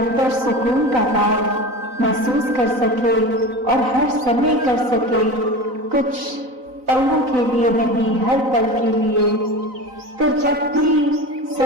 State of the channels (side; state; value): left; late; 3.9 ms